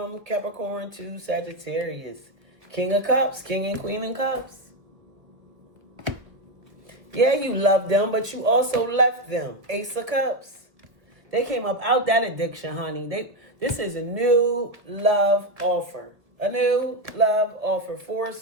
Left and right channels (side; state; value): left; late; 1.6 ms